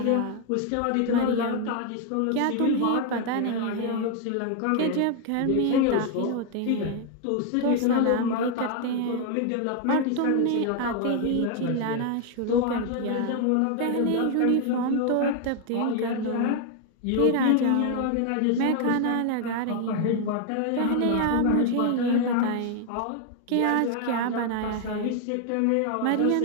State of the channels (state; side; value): different; both; correlation 0.00